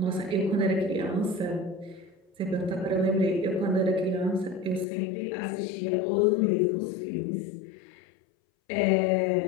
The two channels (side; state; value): right; drops out; at 4.9 s